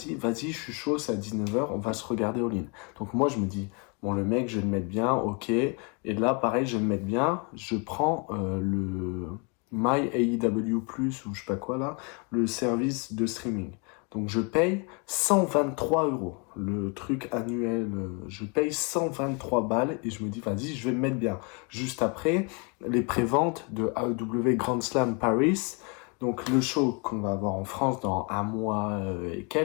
vas-y, je suis chaud, c'est à 19h, on va se regarder All In. Donc, moi, je me dis, bon, le mec, je vais le mettre bien, ok. Et là, pareil, je vais le mettre bien. Je prends le My AEW Plus, ou je sais pas quoi là, le service de streaming. Donc je paye 123 euros. Le truc annuel, je paye 123 balles et je me dis, vas-y, je vais me mettre bien. Juste après, les préventes de AEW Grand Slam Paris. Donc le show qu'on va avoir en France dans un mois et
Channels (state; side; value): quieter; right; 33.5 dB